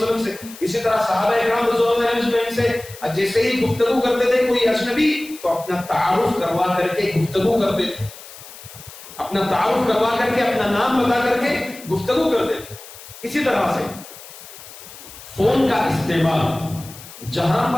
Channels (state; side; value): noise; left; hiss, 17 dB below the sound